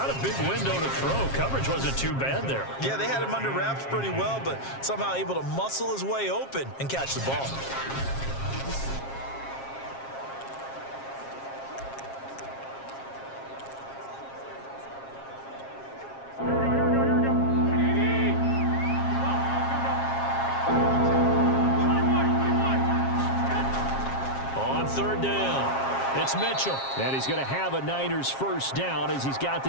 a big window to throw. Coverage wasn't too bad there. Yeah, they had him under wraps pretty well, but somehow able to muscle his way open and catch the ball. It's Mitchell. And he's going to have a Niners first down as he's got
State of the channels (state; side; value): late; right; 7.4 ms